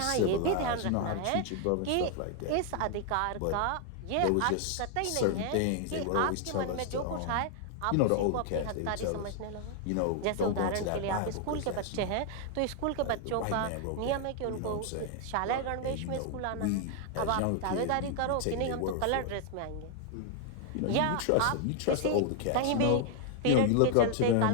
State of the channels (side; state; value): both; different; correlation 0.00